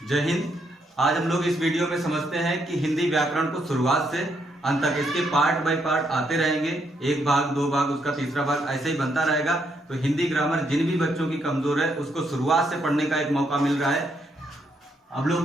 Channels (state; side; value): normal; both; correlation 0.76